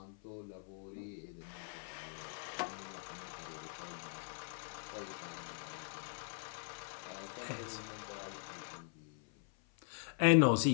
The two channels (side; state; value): right; silent; 50 dB below the other